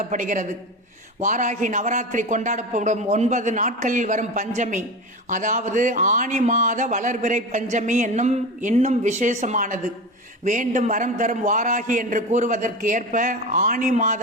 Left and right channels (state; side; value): normal; both; correlation 0.25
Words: வாராகி நவராத்திரி கொண்டாடப்படும் 9 நாட்களில் வரும் பஞ்சமி, அதாவது ஆனி மாத வளர்பிறை பஞ்சமி இன்னும் விசேஷமானது. வேண்டும் வரம் தரும் வாராகி என்று கூறுவதற்கு ஏற்ப ஆனி